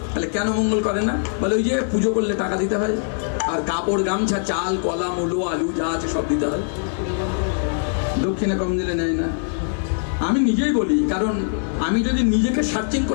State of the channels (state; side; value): silent; right; 62 dB below the other